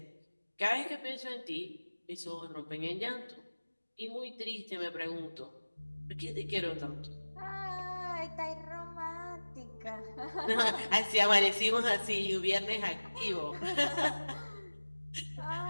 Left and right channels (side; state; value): both; inverted; correlation -1.00